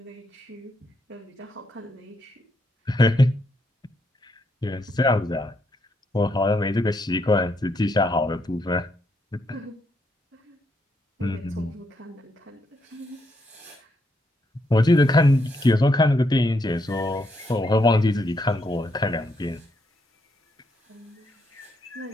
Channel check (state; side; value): normal; both; correlation 0.77